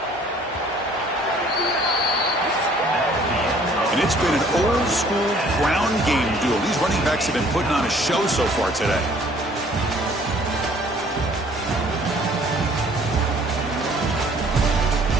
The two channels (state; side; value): normal; both; correlation 0.57